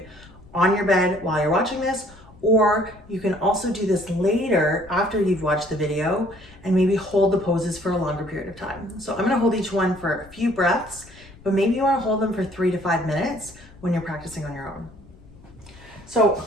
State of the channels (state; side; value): noise; left; rumble, 23 dB below the sound